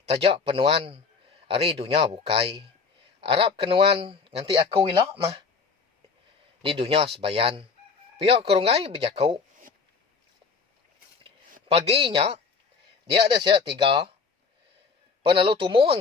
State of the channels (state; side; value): quieter; right; 5.0 dB